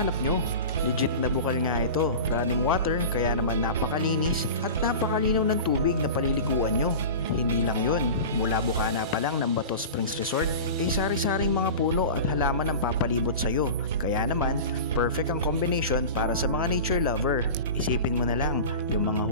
nyo. Legit na bukal nga ito, running water kaya naman napakalinis at napakalinaw ng tubig na paliliguan nyo. Hindi lang yun, mula bukana pa lang ng Bato Springs Resort, sari-saring mga puno at halaman ang papalibot sa'yo. Kaya naman, perfect ang combination para sa mga nature lover. Isipin mo na lang, yung mga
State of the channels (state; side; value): inverted; both; correlation -0.32